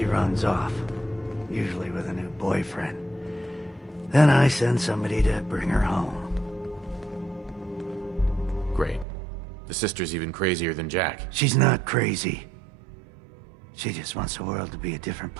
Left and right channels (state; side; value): drops out; left; at 9.1 s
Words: runs off. Usually with a new boyfriend. Then I send somebody to bring her home. Great. The sister's even crazier than Jack. She's not crazy. She just wants the world to be a different